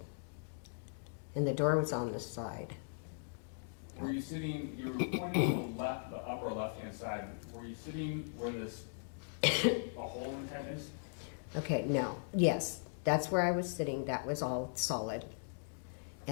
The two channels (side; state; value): right; silent; digital silence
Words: And the door was on the side. Were you sitting, you were pointing to the left, the upper left-hand side, were you sitting where this, a hole in the tent is? Okay, no, yes, that's where I was sitting, that was all solid.